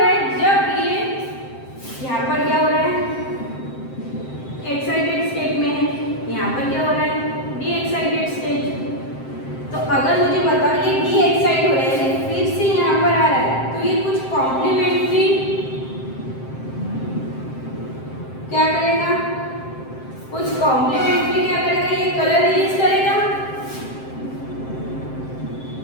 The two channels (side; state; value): right; late; 7.6 ms